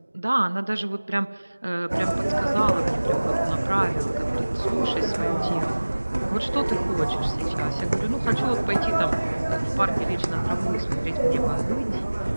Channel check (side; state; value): both; inverted; correlation -1.00